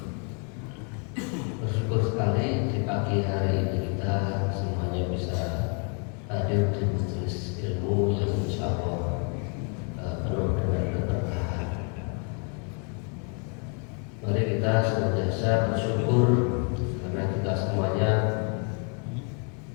Bersyukur sekali di pagi hari ini kita semuanya bisa hadir di majelis ilmu yang insya Allah penuh dengan keberkahan. Mari kita senantiasa bersyukur karena kita semuanya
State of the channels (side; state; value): right; quieter; 39.1 dB